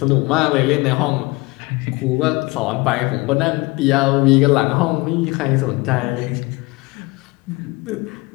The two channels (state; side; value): quieter; right; 23.4 dB